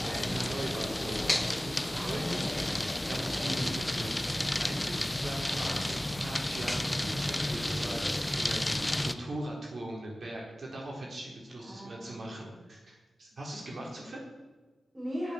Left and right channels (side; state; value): both; normal; correlation 0.97